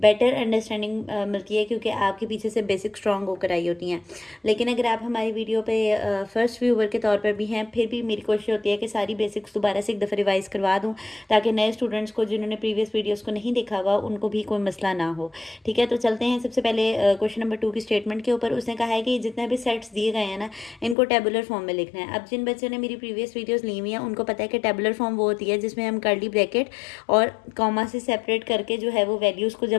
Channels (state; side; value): drops out; right; at 21.0 s